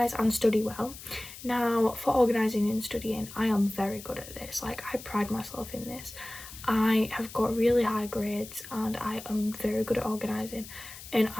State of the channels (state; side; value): noise; left; hiss, 14 dB below the sound